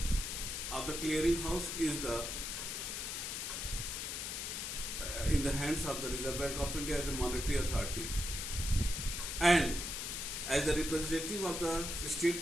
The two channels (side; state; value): left; noise; hiss, 4 dB below the sound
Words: of the clearing house is in the hands of the Reserve Bank of India as the monetary authority, and as the representative of the